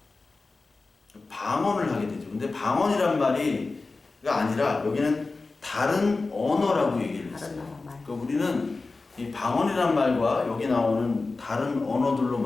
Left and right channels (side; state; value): right; quieter; 3.7 dB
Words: 방언을 하게 되죠. 근데 방언이란 말이 아니라 여기는 다른 언어라고 얘기를 했어요. 그러니까 우리는 이 방언이란 말과 여기 나오는 다른 언어들로